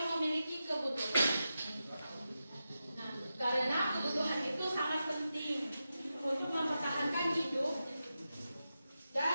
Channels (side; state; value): both; inverted; correlation -0.90